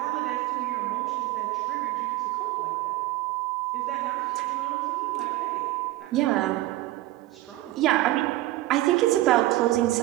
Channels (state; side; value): quieter; left; 16.7 dB